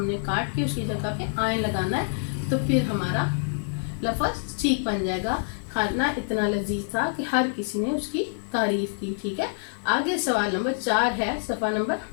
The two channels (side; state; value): right; silent; digital silence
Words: نے کاٹ کے اس کی جگہ پہ آئیں لگانا ہے, تو پھر ہمارا لفظ ٹھیک بن جائے گا. کھانا اتنا لذیذ تھا کہ ہر کسی نے اس کی تعریف کی. ٹھیک ہے, آگے سوال نمبر 4 ہے صفحہ نمبر